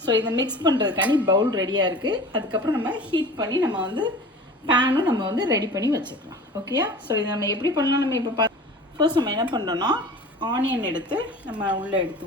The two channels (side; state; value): both; normal; correlation 0.40